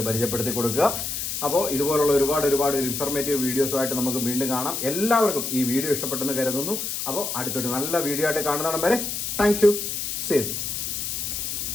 പരിചയപ്പെടുത്തി കൊടുക്കുക. അപ്പോൾ ഇതുപോലുള്ള ഒരുപാട് ഇൻഫർമേറ്റീവ് വീഡിയോസുമായിട്ട് നമുക്ക് വീണ്ടും കാണാം. എല്ലാവർക്കും ഈ വീഡിയോ ഇഷ്ടപ്പെട്ടെന്ന് കരുതുന്നു. അപ്പോൾ അടുത്തൊരു നല്ല വീഡിയോ ആയിട്ട് കാണുന്നിടം വരെ താങ്ക് യു. സേതു.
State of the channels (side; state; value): left; noise; hiss, 3 dB below the sound